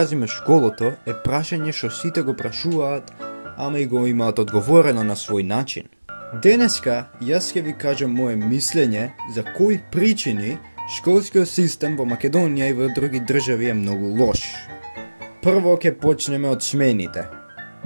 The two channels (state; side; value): inverted; both; correlation -1.00